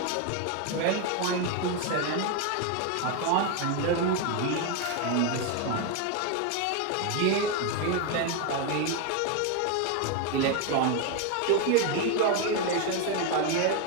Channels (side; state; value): both; different; correlation 0.02